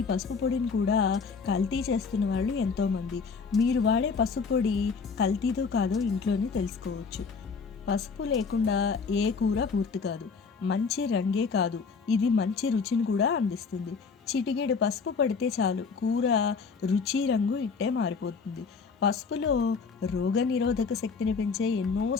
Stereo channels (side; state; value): right; quieter; 5.2 dB